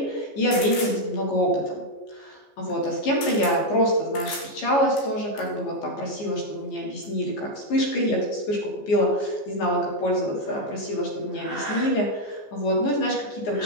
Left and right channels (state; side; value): late; right; 15 ms